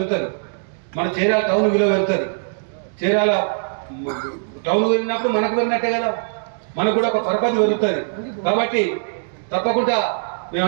మన చీరాల టౌన్ విలువ పెరుగుతుంది. చీరాల టౌన్ పెరిగినప్పుడు మనకు పెరిగినట్టే కదా, మనకు కూడా ఒక పరపతి పెరుగుతుంది. కాబట్టి తప్పకుండా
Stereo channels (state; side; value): silent; left; digital silence